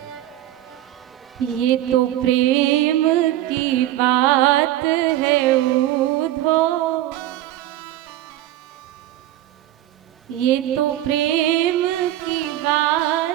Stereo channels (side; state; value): left; quieter; 14.0 dB